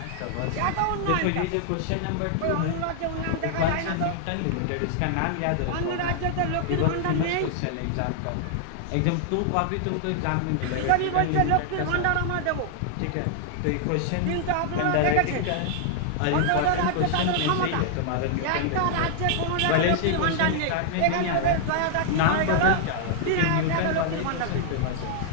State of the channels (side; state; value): both; different; correlation 0.00